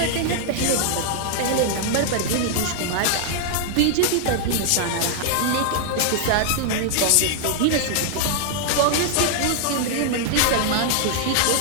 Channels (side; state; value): both; different; correlation -0.01